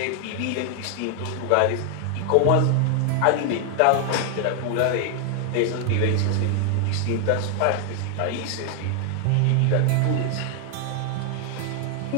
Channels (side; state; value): both; different; correlation 0.00